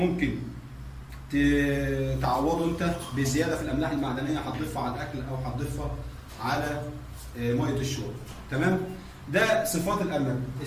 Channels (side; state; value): both; identical; correlation 1.00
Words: تعوضه انت بزياده في الاملاح المعدنيه هتضيفها على الاكل او هتضيفها على ميه الشرب. تمام؟ ده صفات الارنب.